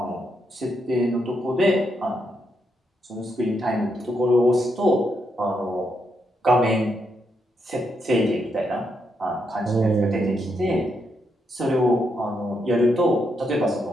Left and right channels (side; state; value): both; normal; correlation 0.80